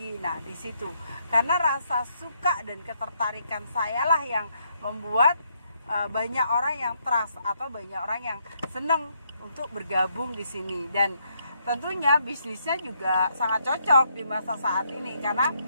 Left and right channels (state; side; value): inverted; both; correlation -0.74